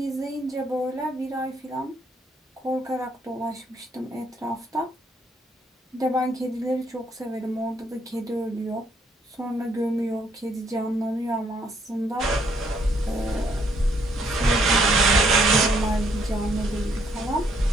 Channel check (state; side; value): normal; both; correlation 0.69